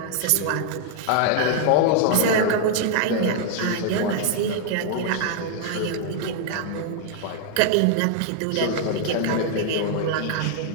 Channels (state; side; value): different; both; correlation 0.00